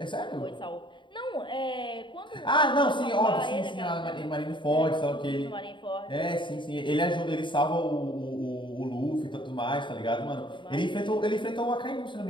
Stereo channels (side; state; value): right; late; 0.23 ms